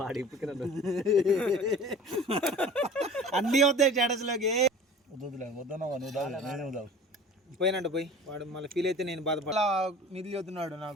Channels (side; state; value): both; normal; correlation 0.42